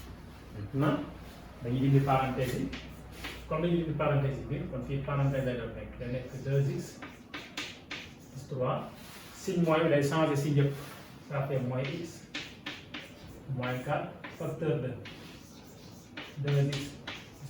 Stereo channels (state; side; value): identical; both; correlation 1.00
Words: Maintenant dañuy dindi parenthèse yi comme dañuy dindi parenthèse yi bi kon fii parenthèse lay doon nekk da nekk 2x plus 3 signe moins bi day changer signe yëpp ça fait moins x moins 4 facteur de 2x plus